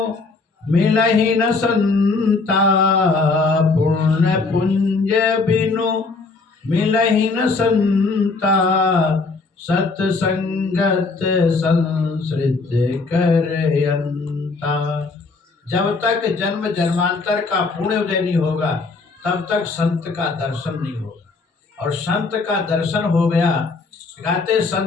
मिलहि न संता, पुण्य पुंज बिनु मिलहि न संता, सत्संगत संसृत करयंता। जब तक जन्म जन्मांतर का पुण्य उदय नहीं होगा, तब तक संत का दर्शन नहीं होगा, और संत का दर्शन हो गया, कहते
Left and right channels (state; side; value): quieter; right; 3.9 dB